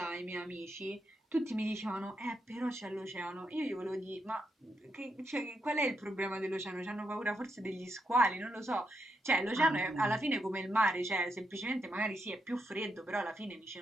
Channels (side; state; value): both; normal; correlation 0.82